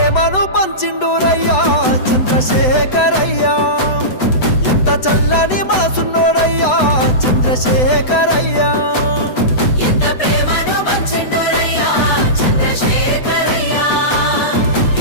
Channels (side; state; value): right; late; 8.0 ms